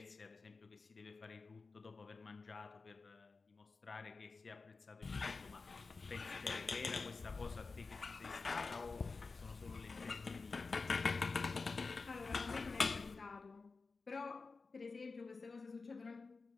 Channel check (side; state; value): right; quieter; 4.2 dB